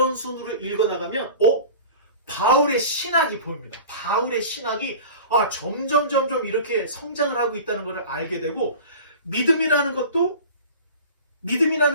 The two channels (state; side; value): inverted; both; correlation -0.38